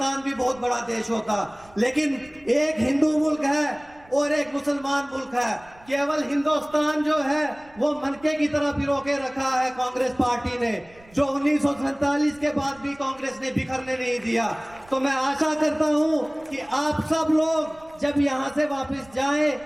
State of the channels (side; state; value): right; noise; rumble, 26 dB below the sound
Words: भी बहुत बड़ा देश होता। लेकिन एक हिंदू मुल्क है और एक मुसलमान मुल्क है। केवल हिंदुस्तान जो है वो मनके की तरह पिरो के रखा है कांग्रेस पार्टी ने, जो 1947 के बाद भी कांग्रेस ने बिखरने नहीं दिया। तो मैं आशा करता हूं कि आप सब लोग जब यहां से वापस जाएं